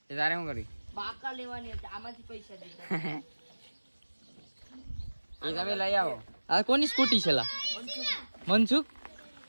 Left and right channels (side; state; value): both; inverted; correlation -1.00